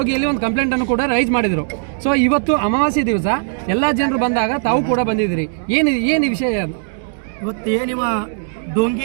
ಒಂದು ಕಂಪ್ಲೇಂಟ್ ಅನ್ನು ಕೂಡ ರೈಸ್ ಮಾಡಿದ್ರು. ಸೊ ಇವತ್ತು ಅಮಾವಾಸ್ಯೆ ದಿವಸ ಎಲ್ಲಾ ಜನರು ಬಂದಾಗ ತಾವು ಕೂಡ ಬಂದಿದ್ದೀರಿ. ಏನು ವಿಷಯ? ಇವತ್ತು ಏನಿವ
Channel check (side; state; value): left; silent; digital silence